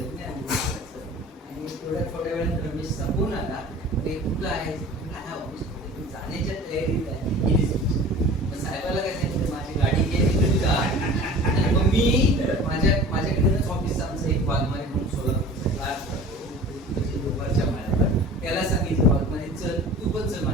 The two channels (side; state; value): both; normal; correlation 0.41